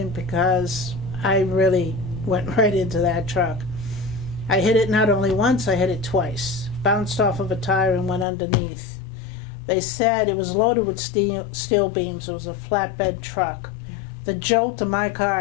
because I really went right into that truck, I hit it not only once, I hit it twice. Bounced off of a tire and went underneath. They said it was loaded with steel beams. It was a flatbed truck. The jolt of my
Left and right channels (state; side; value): drops out; right; at 8.2 s